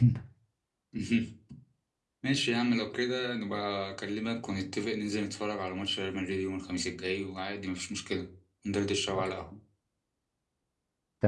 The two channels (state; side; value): identical; both; correlation 1.00